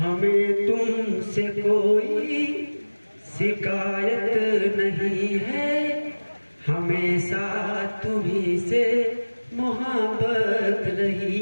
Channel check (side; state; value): both; inverted; correlation -1.00